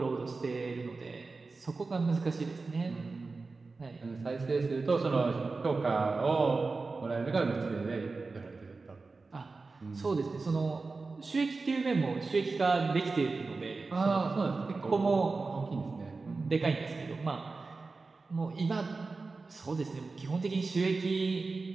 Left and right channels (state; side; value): quieter; left; 3.9 dB